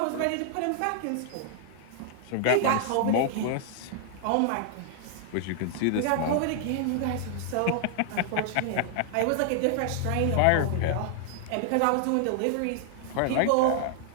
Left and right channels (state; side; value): different; both; correlation 0.00